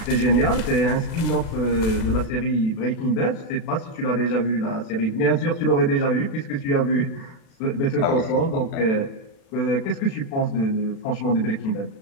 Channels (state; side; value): late; right; 36 ms